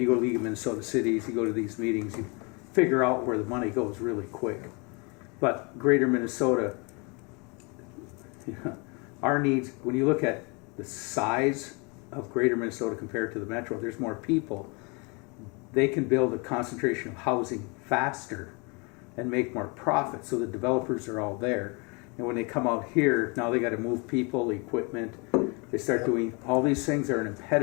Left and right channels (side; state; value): right; quieter; 30.8 dB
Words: go to League of Minnesota Cities, you go to these meetings, you figure out where the money goes really quick. But Greater Minnesota, our needs, when you look at the size of Greater Minnesota compared to the Metro, there's more people. They can build a concentration of housing faster and make more profit, so the developers are all there. And when they come out here, now they got to move people, equipment. They start doing all these things are an